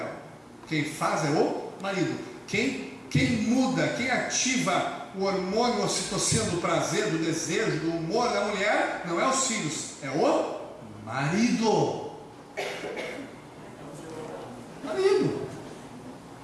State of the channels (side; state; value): both; identical; correlation 1.00